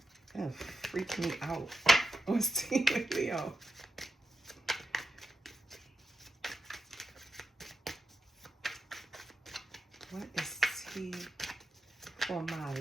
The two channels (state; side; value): normal; both; correlation 0.88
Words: Gonna freak me out. What's tea with Leo? What is tea for my